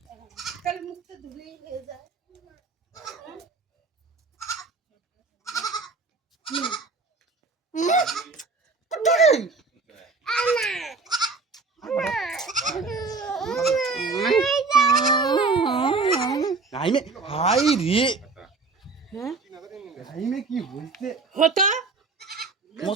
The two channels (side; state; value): left; quieter; 4.2 dB